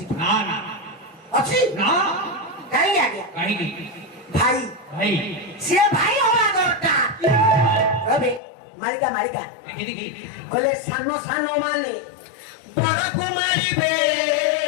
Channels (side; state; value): right; drops out; at 8.4 s